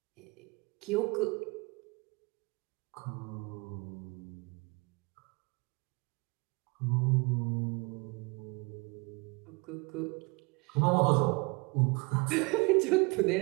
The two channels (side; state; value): left; quieter; 28.0 dB